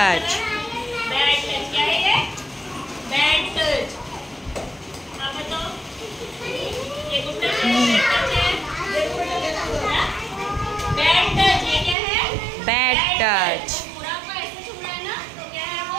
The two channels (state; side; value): drops out; left; at 12.0 s